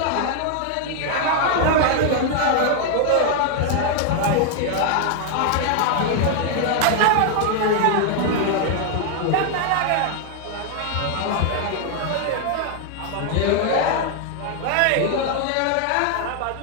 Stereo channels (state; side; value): different; both; correlation 0.00